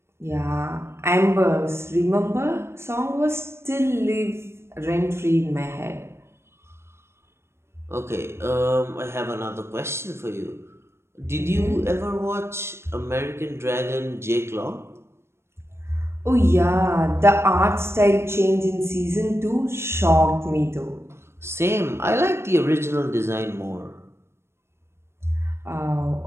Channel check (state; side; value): late; left; 0.12 ms